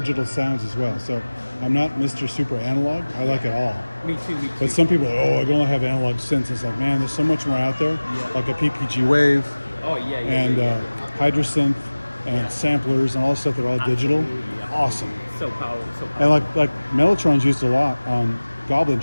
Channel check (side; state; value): both; inverted; correlation -1.00